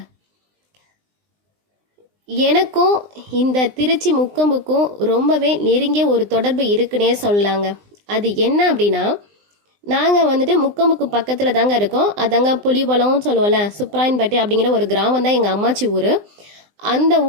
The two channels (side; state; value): left; late; 20 ms